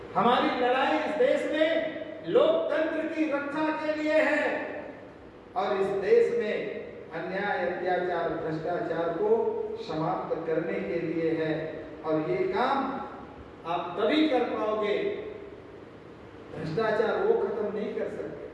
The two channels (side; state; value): both; identical; correlation 1.00